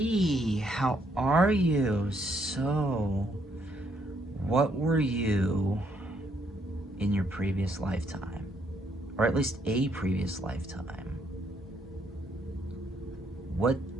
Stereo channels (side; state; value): both; normal; correlation 0.72